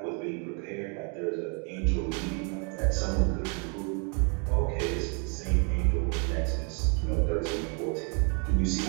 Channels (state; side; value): quieter; left; 36.6 dB